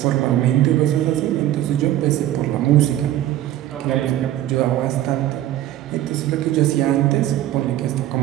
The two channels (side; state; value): left; quieter; 13.2 dB